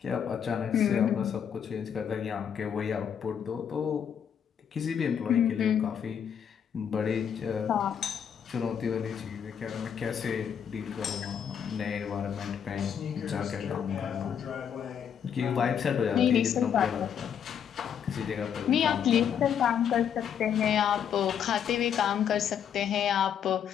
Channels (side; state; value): right; quieter; 8.2 dB